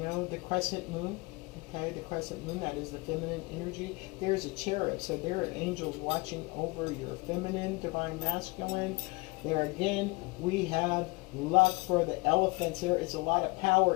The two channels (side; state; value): right; quieter; 26.5 dB